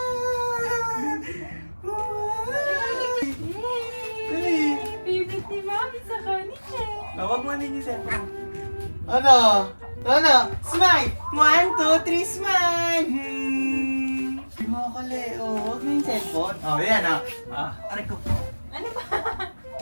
Favorite ni Mami sa kanila. Huwag mo din yung cellphone. Ano? Smile! 1, 2, 3, smile! Kumakali. Huwag mo yung cellphone. Yan aray ko. Ano ba?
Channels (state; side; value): inverted; both; correlation -1.00